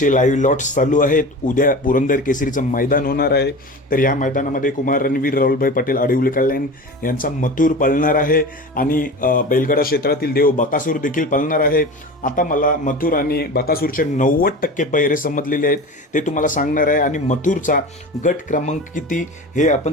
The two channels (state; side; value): normal; both; correlation 0.32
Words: लाईव्ह लॉट्स चालू आहेत. उद्या पुरंदर केसरीचं मैदान होणार आहे. तर या मैदानामध्ये कुमार रणवीर राहुलभाई पटेल आडिवली कल्याण यांचा मथुर पळणार आहे आणि बैलगाडा क्षेत्रातील देव बकासूर देखील पळणार आहे. आता मला मथुर आणि बकासूरचे 90% पैरे समजलेले आहेत, ते तुम्हाला सांगणार आहे आणि मथुरचा गट क्रमांक किती हे